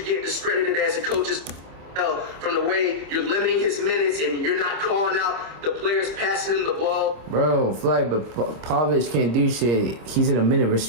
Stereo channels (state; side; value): late; left; 26 ms